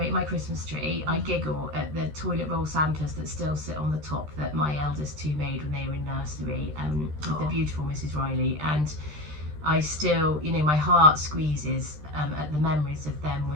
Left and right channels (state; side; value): late; left; 13 ms